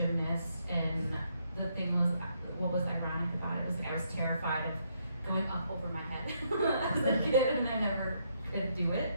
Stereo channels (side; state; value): both; inverted; correlation -0.74